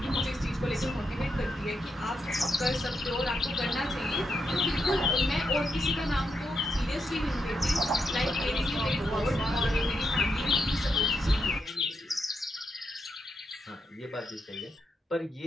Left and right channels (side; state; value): both; normal; correlation 0.82